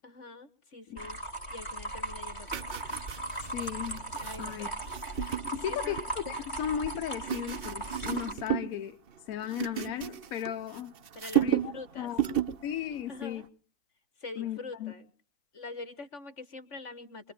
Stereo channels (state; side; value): late; right; 2.7 ms